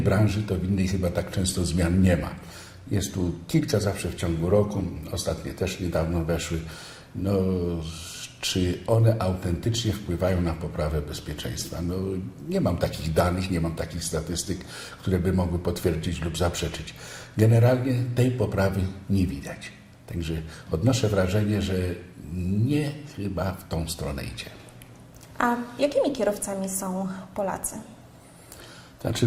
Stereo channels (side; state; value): both; identical; correlation 1.00